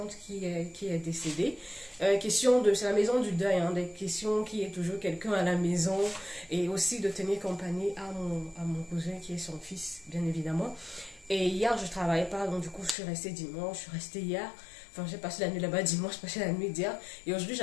qui est décédée. C'est la maison du deuil, hein, des questions qui est toujours quelqu'un à la maison et aussi de tenir compagnie à mon cousin qui est son fils, bien évidemment. Et hier, je ne travaillais pas, donc du coup, je suis restée dimanche, je suis restée hier. Enfin, j'ai passé la nuit là-bas dimanche, j'ai passé la nuit d'hier. Et aujourd'hui,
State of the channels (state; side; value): drops out; right; at 13.0 s